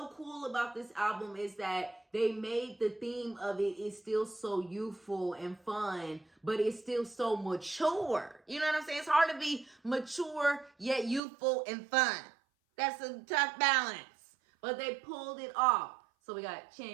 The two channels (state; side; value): drops out; left; at 11.2 s